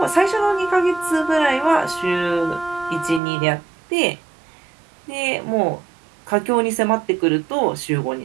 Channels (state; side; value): drops out; left; at 3.2 s